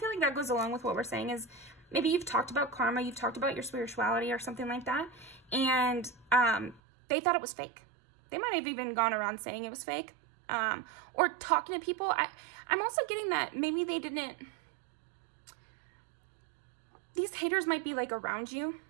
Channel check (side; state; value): left; drops out; at 6.8 s